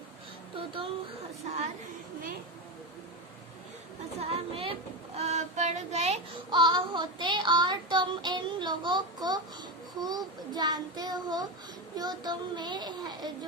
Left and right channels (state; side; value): normal; both; correlation 0.15